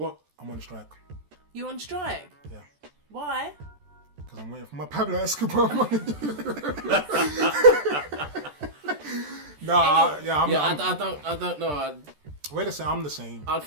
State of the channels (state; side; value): late; left; 14 ms